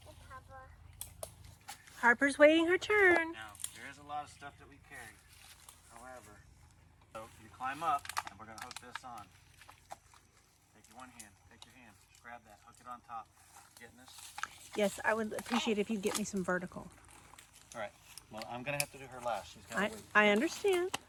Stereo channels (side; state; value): both; identical; correlation 1.00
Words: Hey, Papa. Harper's waiting her turn. Now, there is a lot of stuff that we carry. However, so you climb up, and we're going to hook this on. Take your one hand. Take your hand. Just grab that. Hook it on top. Getting this? Yes, I would appreciate if you get me some vertical. All right. Well, I'm going to have to do her last. She's got to wait. I understand.